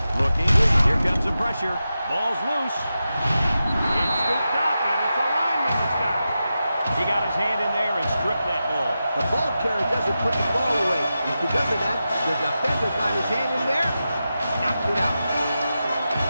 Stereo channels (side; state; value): both; inverted; correlation -0.91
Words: Looking. Here comes the pressure. Ball's loose. It's scooped up, and it's a lineman that's got it. He got his hand in there and stripped that ball. The ball carrier doesn't put the ball away. And because of that, the defender got his hand in there, knocked it out.